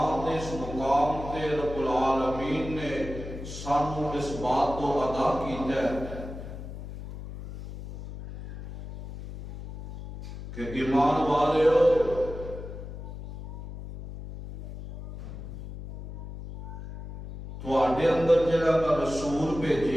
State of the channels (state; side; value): noise; left; hum, 11 dB below the sound